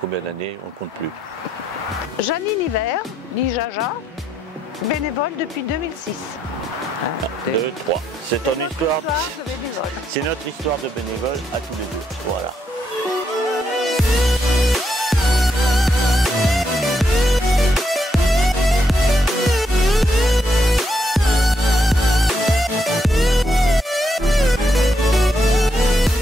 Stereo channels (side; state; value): both; normal; correlation 0.78